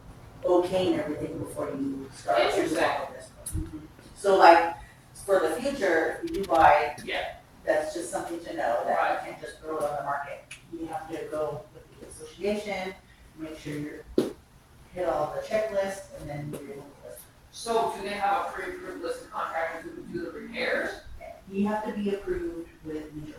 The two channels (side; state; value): both; identical; correlation 1.00